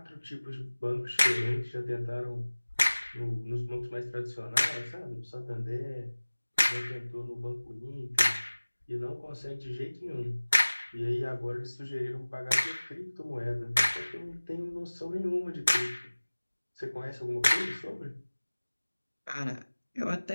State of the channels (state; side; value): inverted; both; correlation -1.00